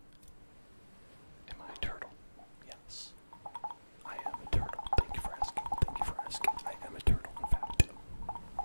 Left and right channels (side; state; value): both; inverted; correlation -1.00